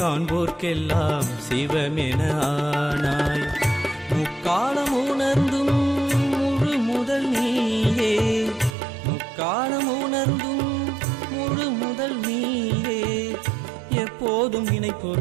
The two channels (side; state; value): left; drops out; at 8.8 s